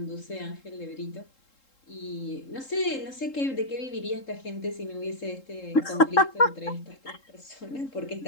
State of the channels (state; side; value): late; right; 3.7 ms